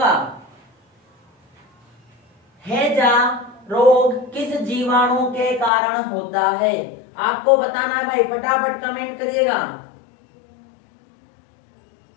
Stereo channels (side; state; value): right; drops out; at 5.7 s